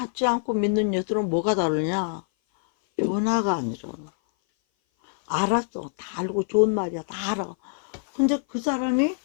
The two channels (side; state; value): right; silent; 57 dB below the other